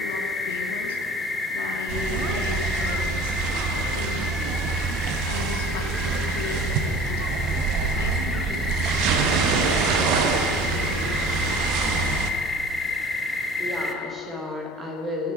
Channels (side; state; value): both; normal; correlation 0.45